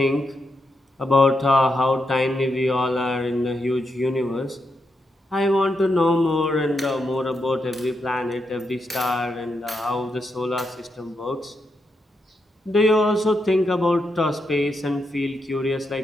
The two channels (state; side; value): normal; both; correlation 0.83